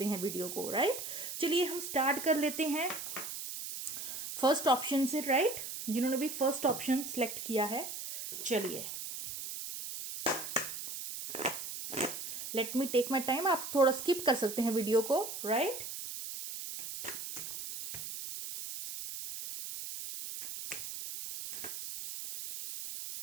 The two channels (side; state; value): right; noise; hiss, 7 dB below the sound